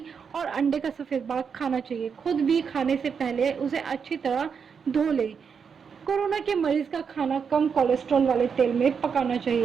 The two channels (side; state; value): left; quieter; 6.4 dB